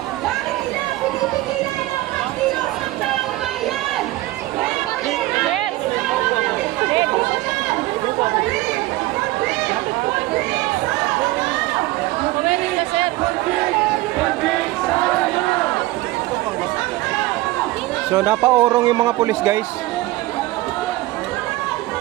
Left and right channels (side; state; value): left; quieter; 18.5 dB